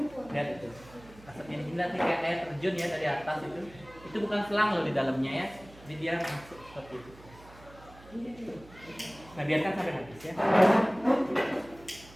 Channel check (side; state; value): right; noise; hum, 21 dB below the sound